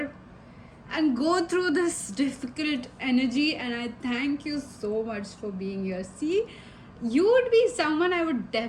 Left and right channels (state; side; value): identical; both; correlation 1.00